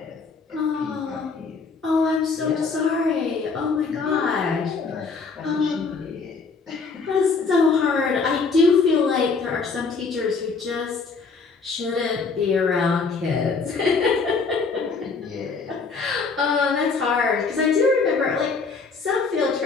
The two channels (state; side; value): quieter; right; 4.6 dB